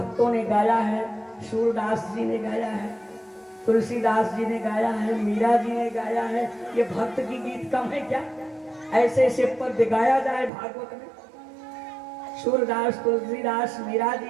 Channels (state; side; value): drops out; left; at 10.5 s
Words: ने गाया है, सूरदास जी ने गाया है, तुलसीदास जी ने गाया है, मीरा जी ने गाया है। ये भक्त की गीत कम है क्या? ऐसे ऐसे पद गाया जाए भागवत में। सूरदास तुलसीदास मीरा